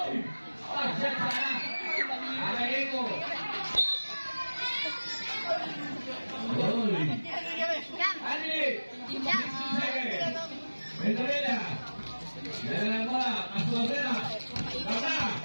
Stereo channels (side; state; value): both; inverted; correlation -1.00